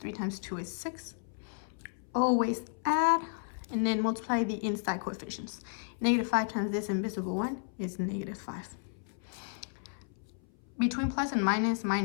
times 2 is 6. Always add, and then multiply the inside coefficients. Negative 5 times this invisible one is negative 5. Between plus and minus,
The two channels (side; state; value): right; silent; 56 dB below the other